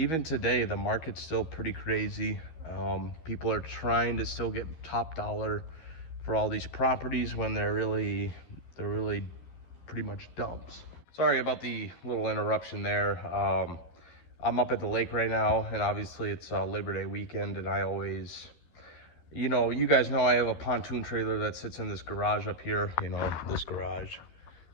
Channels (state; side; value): late; right; 12 ms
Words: today the market's still pretty crazy. People are trying to still get top dollar for all these properties when they're really pretty much dumps. Sorry about the little interruption there. I'm up at the lake right now, and obviously it's Labor Day weekend, and I always, you guys know I have a pontoon trailer that sits in this garage up here, this garage.